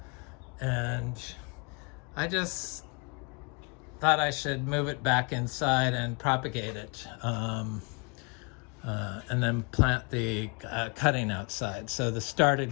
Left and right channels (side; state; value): right; quieter; 33.0 dB